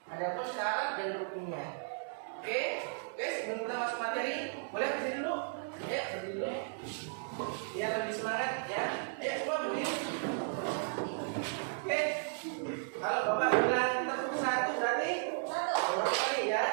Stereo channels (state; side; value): silent; left; digital silence